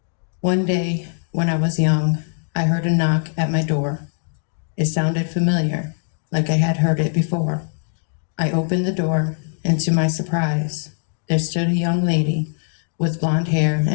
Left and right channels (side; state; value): right; silent; digital silence